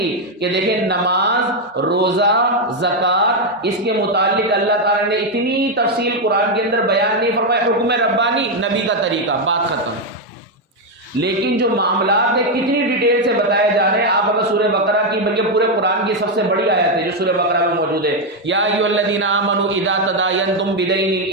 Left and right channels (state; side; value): normal; both; correlation 0.04